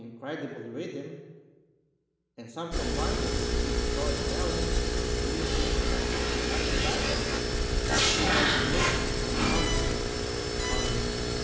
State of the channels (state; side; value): identical; both; correlation 1.00